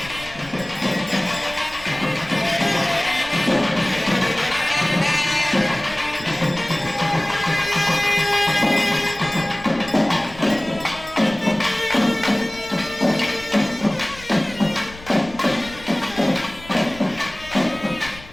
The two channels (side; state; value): left; noise; rumble, 19 dB below the sound